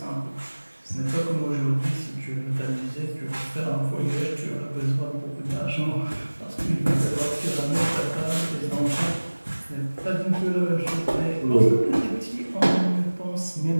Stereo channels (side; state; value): both; inverted; correlation -1.00